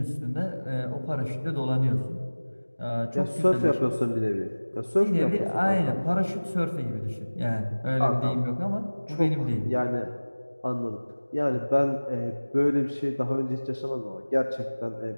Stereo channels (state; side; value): inverted; both; correlation -1.00